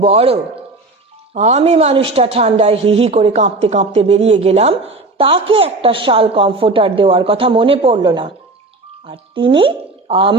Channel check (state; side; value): quieter; left; 3.2 dB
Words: বড়। আমি মানুষটা ঠান্ডায় হিহি করে কাঁপতে কাঁপতে বেরিয়ে গেলাম, তাকে একটা শাল কমফোর্টার দেওয়ার কথা মনে পড়ল না, আর তিনি